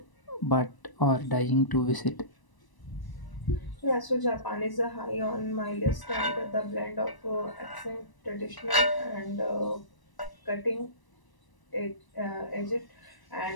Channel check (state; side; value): late; right; 1.0 ms